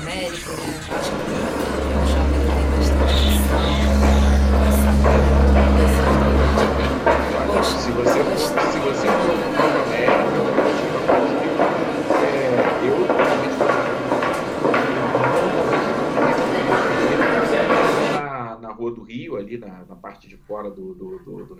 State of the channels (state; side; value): identical; both; correlation 1.00